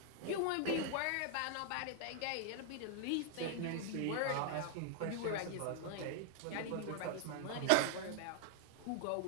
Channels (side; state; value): both; different; correlation 0.00